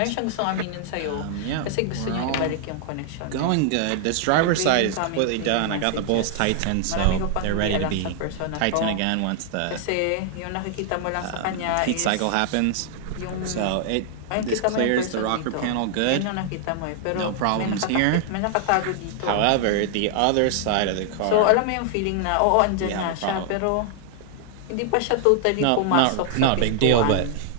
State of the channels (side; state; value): both; different; correlation 0.00